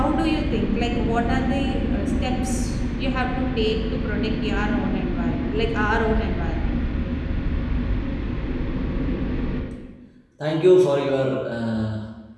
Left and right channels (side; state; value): both; identical; correlation 1.00